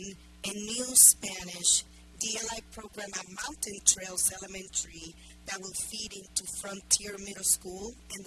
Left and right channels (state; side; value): identical; both; correlation 1.00